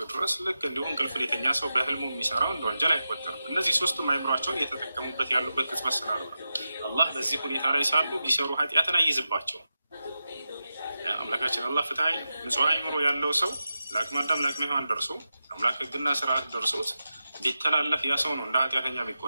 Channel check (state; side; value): inverted; both; correlation -0.91